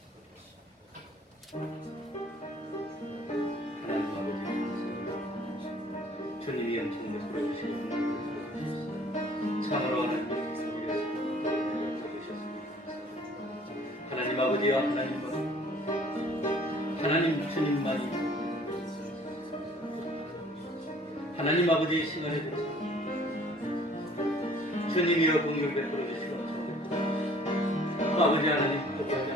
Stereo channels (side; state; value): both; normal; correlation 0.54